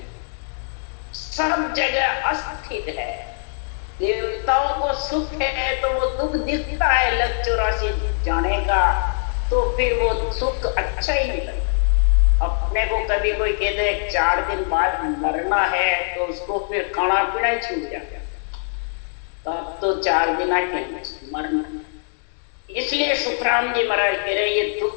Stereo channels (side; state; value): right; silent; digital silence